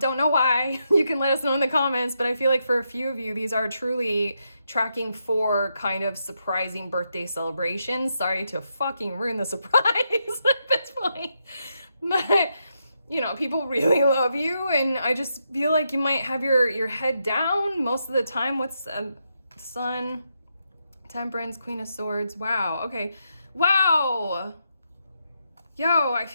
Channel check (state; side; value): inverted; both; correlation -0.82